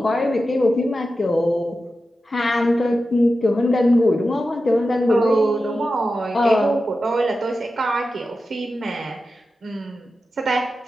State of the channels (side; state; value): both; normal; correlation 0.92